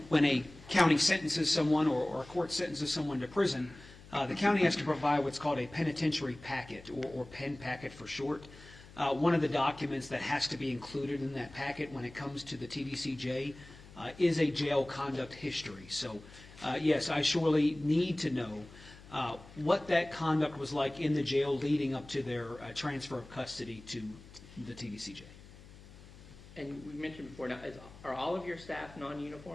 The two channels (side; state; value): left; noise; hum, 19 dB below the sound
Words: when a county sentences someone or a court sentences someone to prison, the county has to provide what's called a penitentiary packet, or PEN packet for short. One of the documents that has to be included in that packet when it comes to the TDCJ is a jail conduct history. So, yes, I surely need to know what that conduct was like in the jail leading up to their transfer of custody to the TDCJ. And we mentioned before, now, are all of your staff